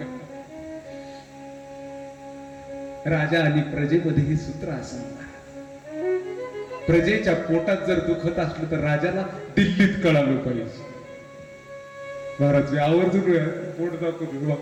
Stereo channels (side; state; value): both; identical; correlation 1.00